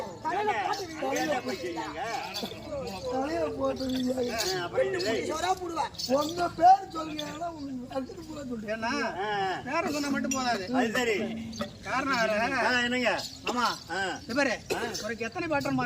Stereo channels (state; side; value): identical; both; correlation 1.00